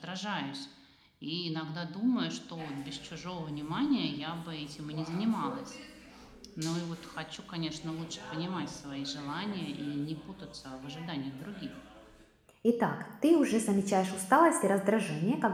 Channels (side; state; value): both; identical; correlation 1.00